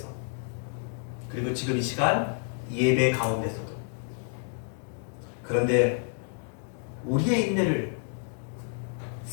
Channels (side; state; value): right; silent; 58 dB below the other